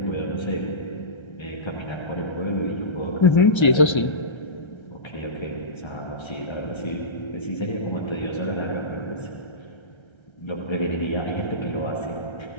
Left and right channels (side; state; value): right; late; 1.3 ms